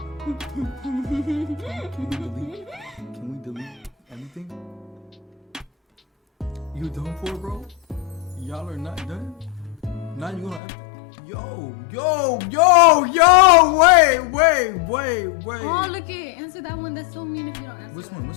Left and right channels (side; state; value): right; drops out; at 10.6 s